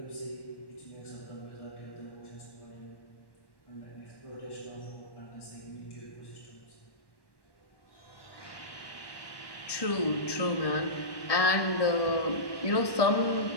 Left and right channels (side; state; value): right; late; 1.1 ms